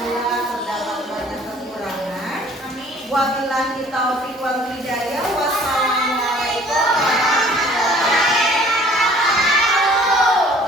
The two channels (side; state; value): both; normal; correlation 0.53